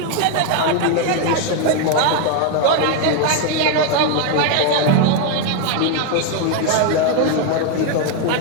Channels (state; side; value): different; both; correlation 0.01